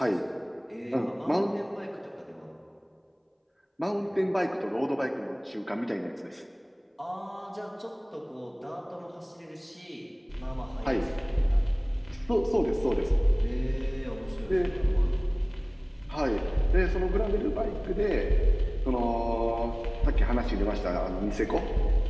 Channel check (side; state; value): both; identical; correlation 1.00